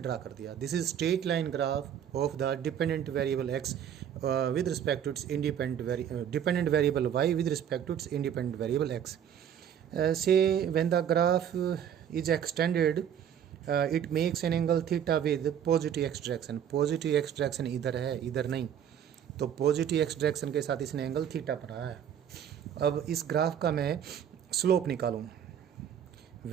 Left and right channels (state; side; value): quieter; left; 9.1 dB